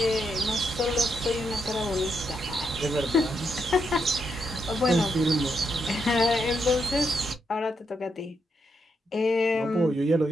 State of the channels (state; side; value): normal; both; correlation 0.80